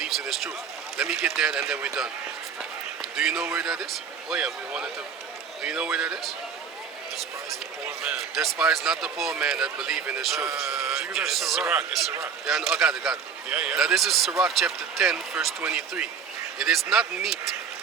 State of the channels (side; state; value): left; quieter; 6.5 dB